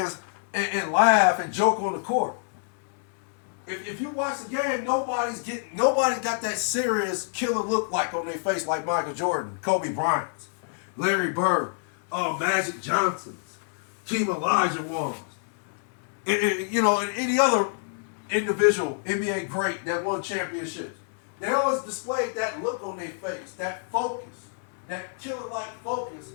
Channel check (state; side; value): silent; right; 60 dB below the other